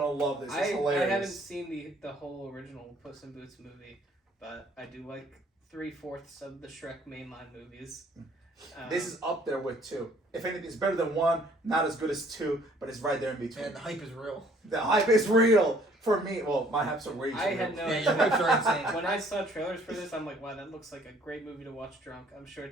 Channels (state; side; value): normal; both; correlation 0.59